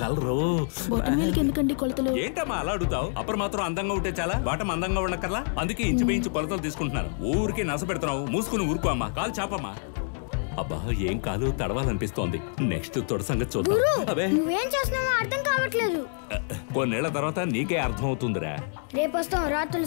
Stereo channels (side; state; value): right; silent; 60 dB below the other